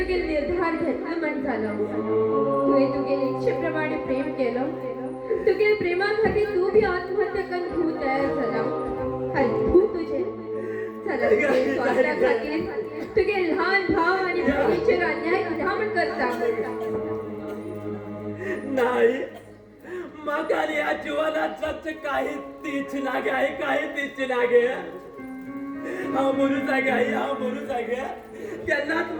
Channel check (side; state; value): both; identical; correlation 1.00